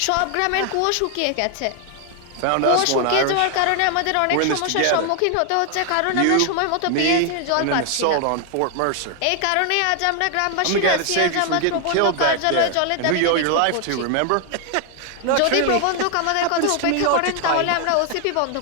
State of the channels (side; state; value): both; different; correlation 0.00